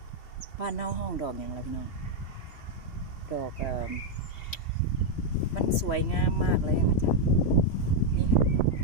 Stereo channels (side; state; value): right; late; 3.1 ms